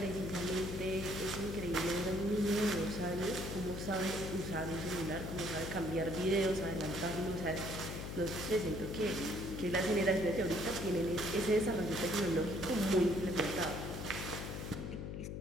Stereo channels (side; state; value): left; noise; hum, 6 dB below the sound